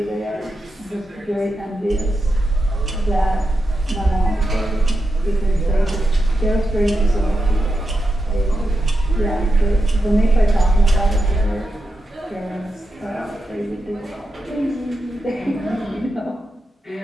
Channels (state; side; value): normal; both; correlation 0.88